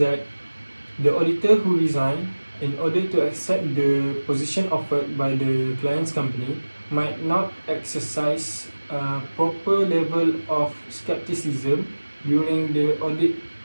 the auditor who resigned in order to accept the position offered by the client's company might not exercise a proper level of skepticism during the audit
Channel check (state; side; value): inverted; both; correlation -1.00